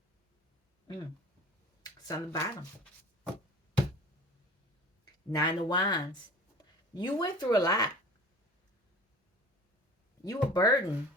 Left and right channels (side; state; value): both; normal; correlation 0.41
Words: It's on the bottom. Nine of Wands. You went through a lot. You were burdened.